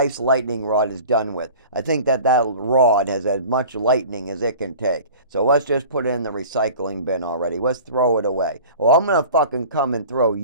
lightning rod is done with. I think that rod has as much lightning as it can take. So let's just put it in the recycling bin already. Let's throw it away. Well, I'm going to fucking come and throw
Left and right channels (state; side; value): inverted; both; correlation -0.41